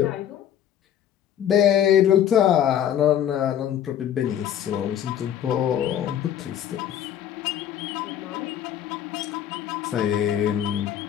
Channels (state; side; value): quieter; right; 10.3 dB